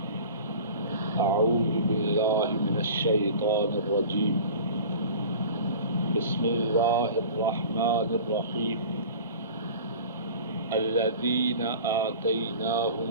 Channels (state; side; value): inverted; both; correlation -0.40